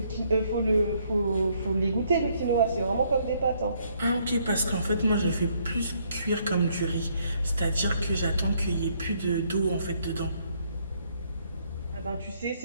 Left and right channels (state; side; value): inverted; both; correlation -0.69